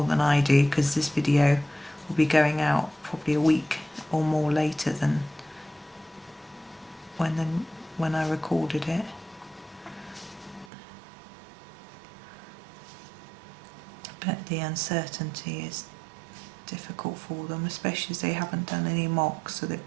than I do, because this video will be going out probably a week or more later than when I recorded it. But the uncertainty is difficult for them, especially as they haven't done any mocks, so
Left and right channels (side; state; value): left; drops out; at 10.7 s